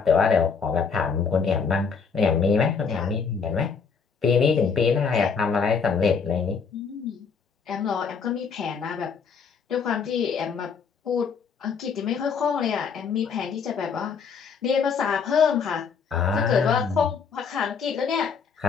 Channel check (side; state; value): right; quieter; 5.9 dB